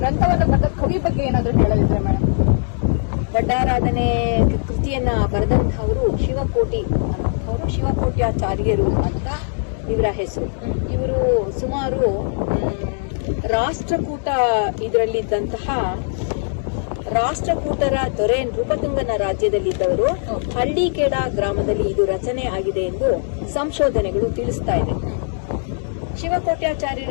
ಬರೆದ ಕವಿ ಬಗ್ಗೆ ಏನಾದ್ರೂ ಹೇಳಲಿದ್ರೆ ಮೇಡಮ್? ಒಡ್ಡಾರಾಧನೆ ಕೃತಿಯನ್ನ ಬರೆದಂತಹವರು ಶಿವಕೋಟ್ಯಾಚಾರ್ಯರು ಅಂತ ಇವರ ಹೆಸರು. ಇವರು ಸುಮಾರು ಇದರಲ್ಲಿದ್ದಂತಹ ರಾಷ್ಟ್ರಕೂಟರ ದೊರೆ ನೃಪತುಂಗನ ರಾಜ್ಯದಲ್ಲಿದ್ದವರು ಹಳ್ಳಿಕೇಡ ಗ್ರಾಮದಲ್ಲಿ ಇದು ರಚನೆ ಆಗಿದೆ ಎಂದು ಸಂಶೋಧನೆಗಳು ತಿಳಿಸ್ತಾ ಇದೆ.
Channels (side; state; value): right; silent; digital silence